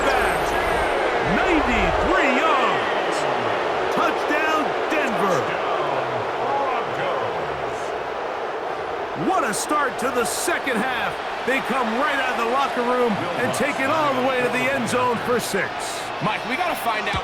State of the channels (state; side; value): identical; both; correlation 1.00